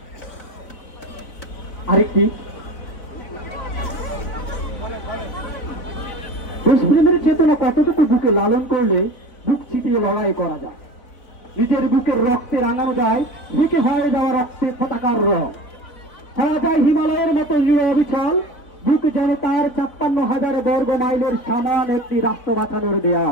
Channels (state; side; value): late; right; 4.0 ms